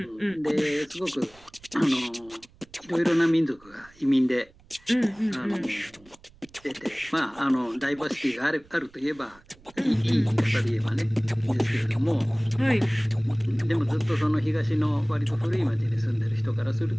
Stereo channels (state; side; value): noise; right; rumble, 27 dB below the sound